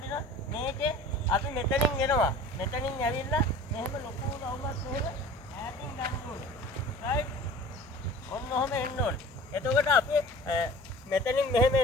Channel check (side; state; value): both; normal; correlation 0.43